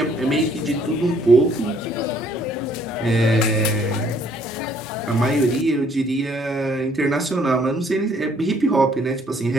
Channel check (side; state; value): both; normal; correlation 0.63